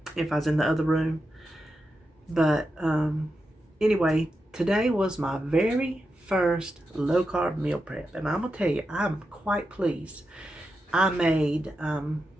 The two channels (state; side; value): normal; both; correlation 0.88